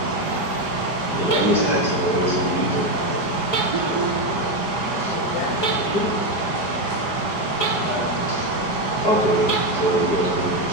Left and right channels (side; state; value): right; late; 4.9 ms